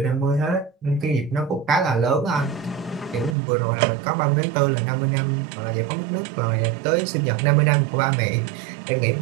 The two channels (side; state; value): left; drops out; at 3.4 s